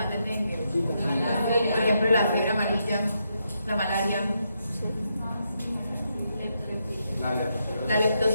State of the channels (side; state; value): both; inverted; correlation -0.81